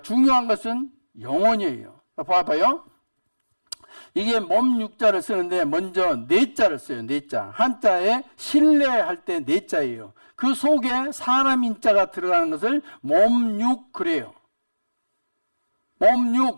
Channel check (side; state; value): both; inverted; correlation -1.00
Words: 중요한 것은 영혼이에요. 봐봐요. 이게 몸 육자를 쓰는데 먼저 내자를 써요. 내자. 한자에 신뢰할 때 내자예요. 그 속에 사람 인자가 들어가는 것을 몸육 그래요.